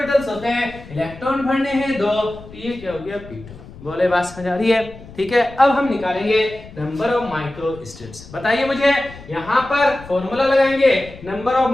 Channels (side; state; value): left; noise; rumble, 18 dB below the sound